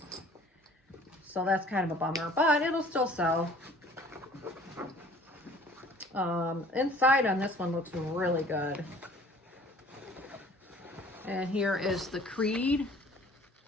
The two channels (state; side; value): normal; both; correlation 0.51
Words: So that's kind of a bummer, but it'll still sell. Inside on this one looks really good. And here is the Creed.